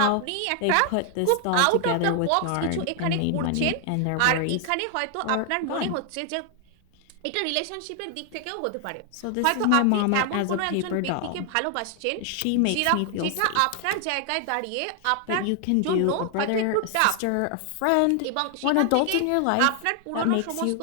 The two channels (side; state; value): both; different; correlation 0.00